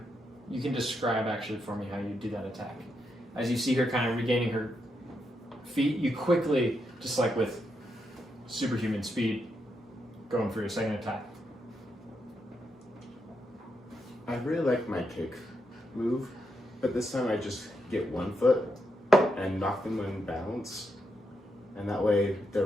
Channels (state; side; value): normal; both; correlation 0.82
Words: you can describe actually for me how you do that attack. As you see her kind of regaining her feet, you quickly, just like with superhuman speed, going for your second attack. I really like my kick move, but this time I just get one foot and knock them in balance, and that way their